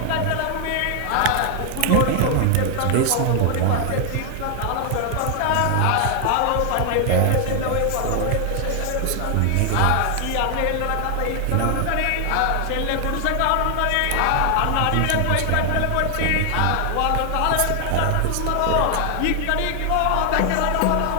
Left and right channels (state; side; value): different; both; correlation 0.00